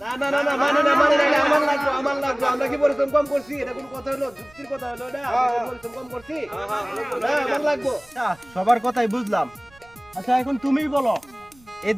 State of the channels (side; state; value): right; noise; rumble, 28 dB below the sound